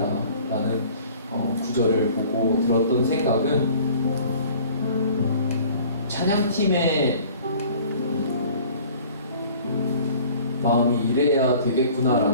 라는 구절을 보고 들었던 생각은 찬양팀의 마음이 이래야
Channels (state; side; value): inverted; both; correlation -0.49